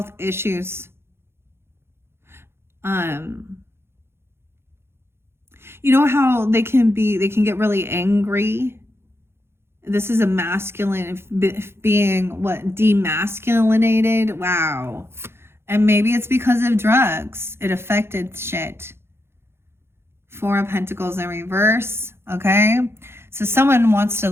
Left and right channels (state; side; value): late; left; 0.12 ms